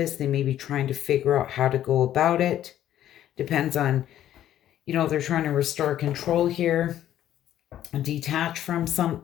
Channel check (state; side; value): quieter; right; 11.9 dB